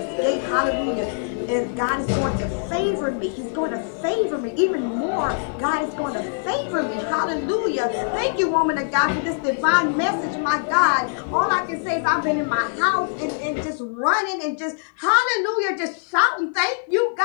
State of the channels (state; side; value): silent; right; digital silence